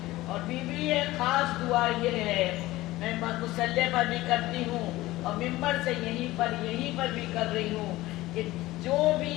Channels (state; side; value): quieter; right; 17.8 dB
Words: اور بی بی ایک خاص دعا یہ ہے، میں مصلی پر بھی کرتی ہوں اور ممبر سے یہیں پر بھی کر رہی ہوں، کہ جو بھی